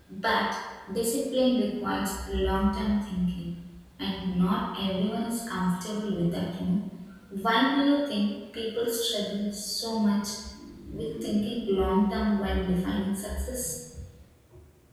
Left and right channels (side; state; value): both; identical; correlation 1.00